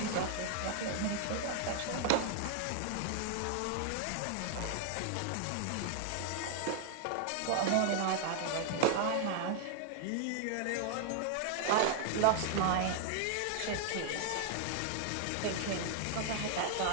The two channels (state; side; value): different; both; correlation 0.00